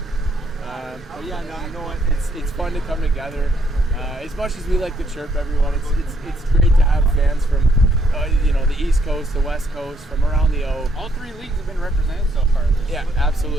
But yeah, no, you know what? It's fun to come together. As much as we like to chirp everyone, it's great to have fans from the East Coast, the West Coast, from around the O. All three leagues have been represented so far. Yeah,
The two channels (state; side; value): normal; both; correlation 0.71